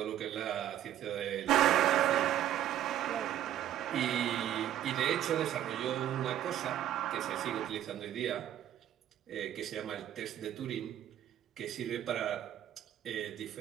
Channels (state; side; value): quieter; left; 11.5 dB